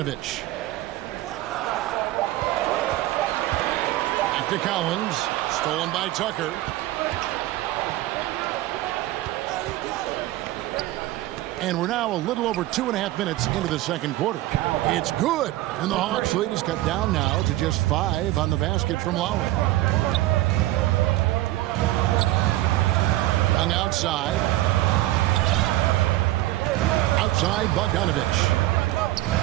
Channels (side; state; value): left; quieter; 16.3 dB